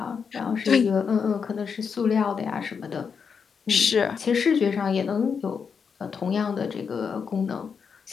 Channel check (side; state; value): right; quieter; 6.2 dB